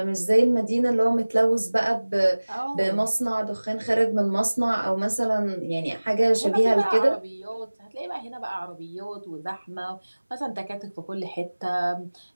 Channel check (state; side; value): inverted; both; correlation -1.00